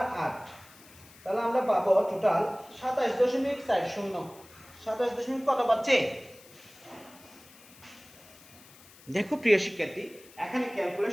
তাহলে আমরা পাবো টোটাল 27.40 27 কত পাচ্ছে দেখো প্রিয় শিক্ষার্থী এখানে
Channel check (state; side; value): noise; left; hiss, 23 dB below the sound